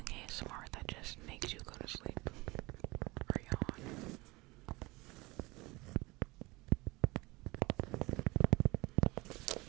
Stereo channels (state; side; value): quieter; left; 22.9 dB